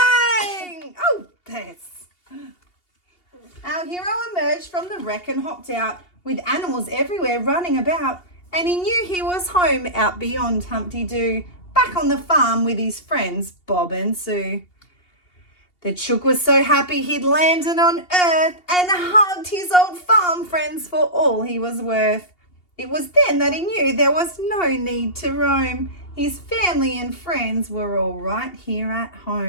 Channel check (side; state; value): right; late; 2.8 ms